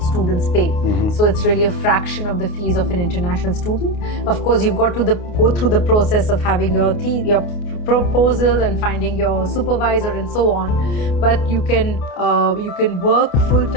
students pay. Mm-hmm. So it's really a fraction of the fees of an international student. Of course, you've got to go through the process of having your proposal and finding your supervisor and so on. But you can work full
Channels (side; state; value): right; late; 28 ms